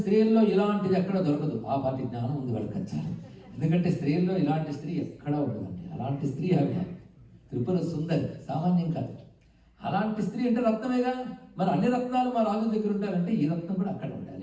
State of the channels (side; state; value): both; identical; correlation 1.00